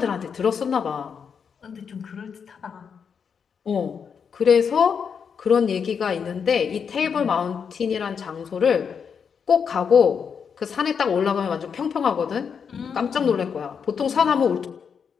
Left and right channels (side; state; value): right; quieter; 6.6 dB